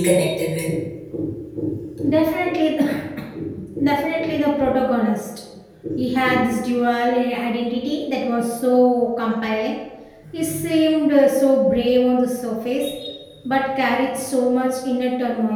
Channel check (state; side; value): identical; both; correlation 1.00